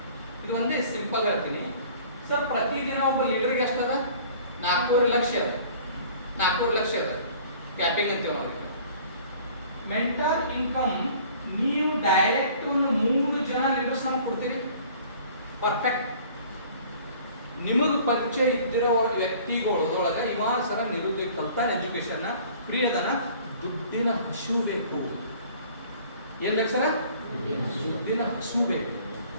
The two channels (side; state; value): both; inverted; correlation -0.50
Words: ಇದು ಒಂದೇ ಸಿಂಪಲ್ ಹೇಳ್ತೀನಿ ಸರ್. ಪ್ರತಿದಿನ ಒಬ್ಬ ಲೀಡರ್ಗೆ ಎಷ್ಟದ? 4.5 ಲಕ್ಷ ಅದ. 4.5 ಲಕ್ಷ ಅದ ಕ್ಯಾಪಿಂಗ್ ಅಂತೀವಿ ನಾವು. ಮೆಂಟರ್ ಇನ್ಕಮ್ ನೀವು ಡೈರೆಕ್ಟ್ ಒಂದು 3 ಜನ ಲೀಡರ್ಸ್ ನಾವು ಕೊಡ್ತೀರಿ. ಪರ್ಫೆಕ್ಟ್. ನಿಮಗೆ ಪರಿಚಯ ಇದ್ದಿರೋ ವ್ಯಕ್ತಿಗಳೊಳಗೆ ಇವ ಸರ ನಿರುದ್ಯೋಗ ಕಲ್ತಾನ, ಎಜುಕೇಶನ್ ಫ್ರೀ ಅದನ, ದುಡ್ಡಿನ ಹಸು ಬೇಕು. ಏನ್ ಬೇಕು ಸರ? ದುಡ್ಡಿನ ಹಸು ಬೇಕು.